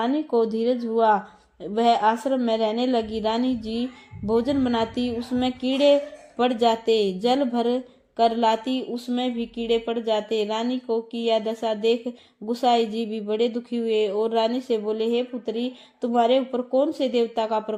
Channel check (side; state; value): both; identical; correlation 1.00